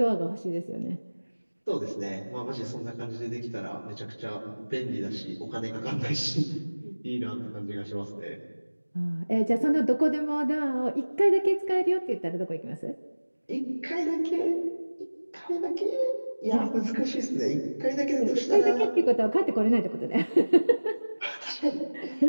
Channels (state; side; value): inverted; both; correlation -1.00